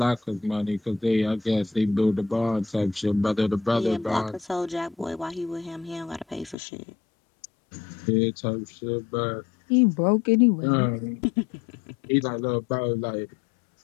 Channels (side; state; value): right; drops out; at 6.6 s